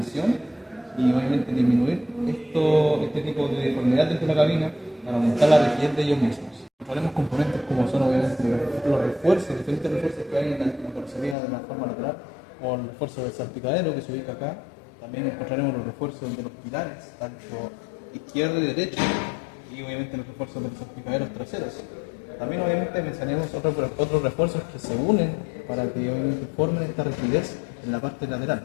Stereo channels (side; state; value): right; drops out; at 11.4 s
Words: y obviamente disminuir este tipo de deformidad dentro de la cabina para aumentar la rigidez de ellos mismos. Encontraremos componentes como son obviamente los refuerzos, diferentes refuerzos que hay en la carrocería de la forma lateral, o el refuerzo del salpicadero que se ubica acá. También encontraremos los refuerzos de los pilares, tanto izquierdo y derecho, y obviamente los refuerzos de los salpicaderos traseros. También obviamente mencionamos otros refuerzos que se unen para que obviamente formen esta rigidez en la parte lateral,